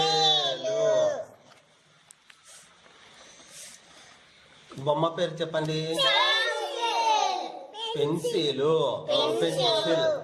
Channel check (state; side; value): identical; both; correlation 1.00